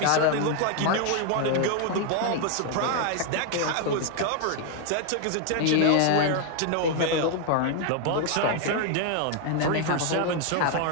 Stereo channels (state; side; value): different; both; correlation 0.00